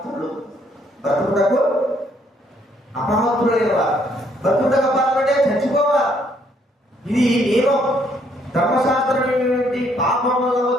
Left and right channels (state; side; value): normal; both; correlation 0.68